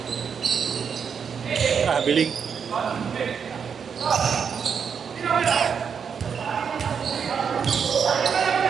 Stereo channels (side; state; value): left; quieter; 6.8 dB